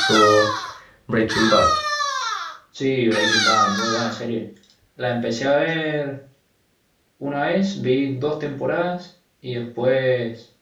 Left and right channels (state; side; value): identical; both; correlation 1.00